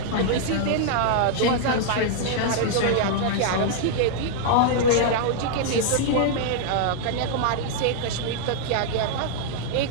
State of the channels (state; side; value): different; both; correlation -0.01